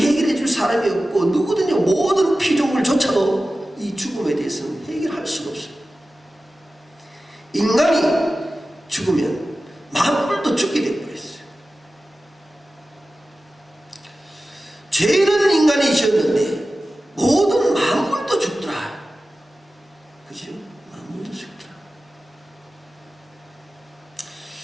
줄 사람이 없고, 누구든지 모든 피조물조차도 이 죽음에 대해서는 해결할 수가 없어요. 인간이 죽으면 만물도 죽게 되어버렸어요. 죄는 인간이 지었는데 모든 만물도 죽더라. 그죠? 만물도 죽더라.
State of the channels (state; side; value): normal; both; correlation 0.95